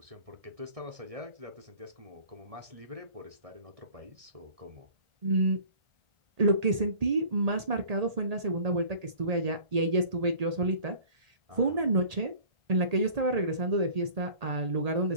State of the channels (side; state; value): left; late; 1.8 ms